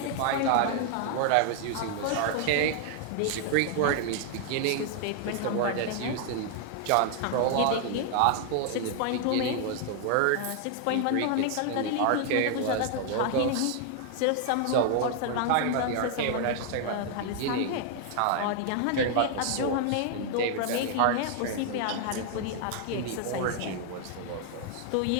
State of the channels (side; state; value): both; different; correlation 0.00